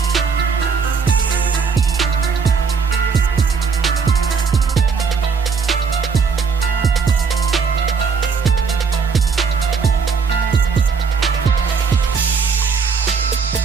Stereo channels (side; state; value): left; quieter; 5.5 dB